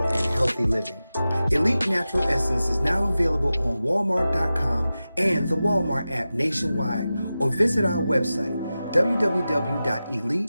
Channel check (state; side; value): inverted; both; correlation -0.94